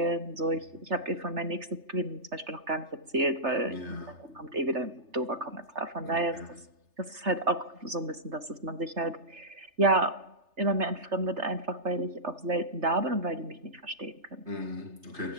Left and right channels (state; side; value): late; left; 3.3 ms